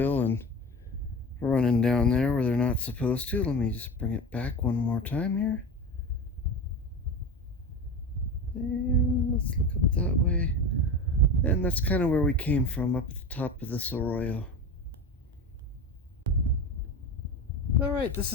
and running down there where they're not supposed to. Let me just bring it back one more time here. And let's look up that way. And that's kind of where we came from, up at the top of this Arroyo. Alright, this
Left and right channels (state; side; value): normal; both; correlation 0.28